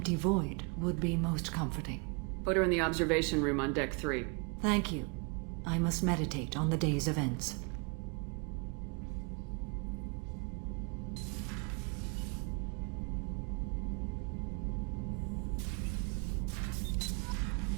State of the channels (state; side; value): quieter; left; 33.1 dB